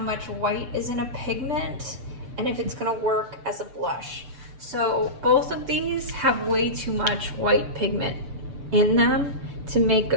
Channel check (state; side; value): late; left; 6.9 ms